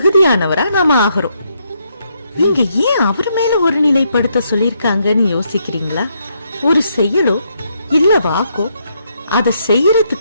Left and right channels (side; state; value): both; inverted; correlation -0.76